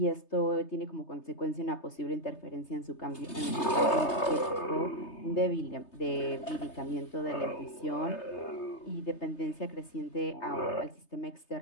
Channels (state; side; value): late; right; 3.3 ms